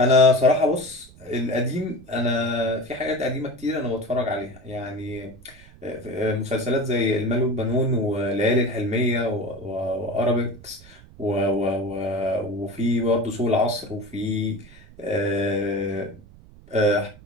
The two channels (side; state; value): right; noise; rumble, 22 dB below the sound